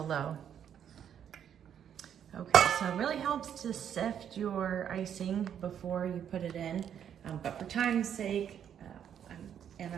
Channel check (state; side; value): quieter; left; 9.0 dB